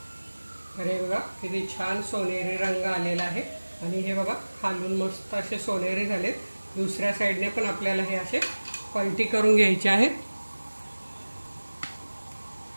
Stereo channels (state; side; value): inverted; both; correlation -1.00